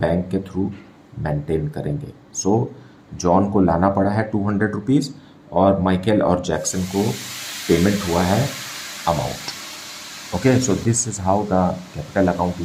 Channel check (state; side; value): identical; both; correlation 1.00